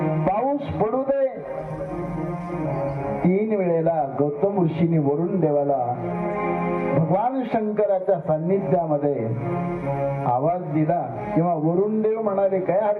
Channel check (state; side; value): identical; both; correlation 1.00